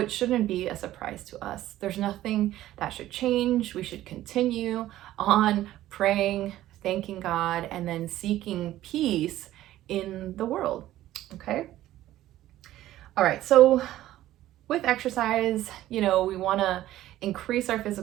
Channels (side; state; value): left; quieter; 14.2 dB